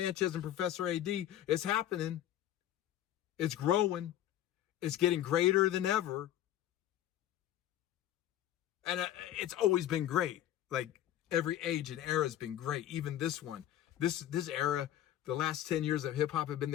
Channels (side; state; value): right; quieter; 12.1 dB